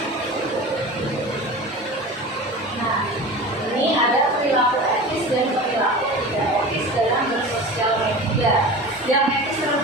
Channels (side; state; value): both; normal; correlation 0.34